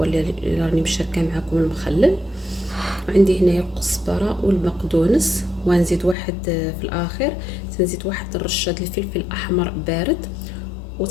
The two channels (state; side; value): drops out; right; at 6.2 s